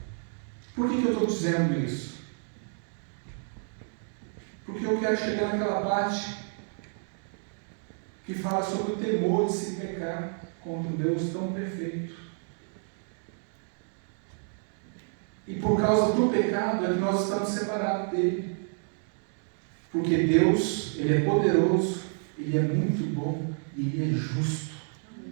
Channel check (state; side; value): silent; left; 58 dB below the other